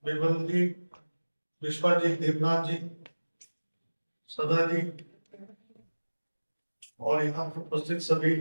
Bimal ji, Biswajit Debnath ji, Sada ji, और यहाँ पर उपस्थित सभी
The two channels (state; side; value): inverted; both; correlation -1.00